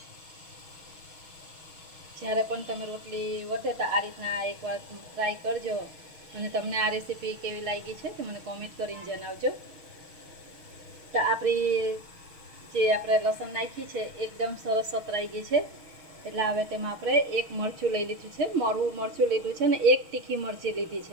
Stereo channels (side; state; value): left; late; 6.3 ms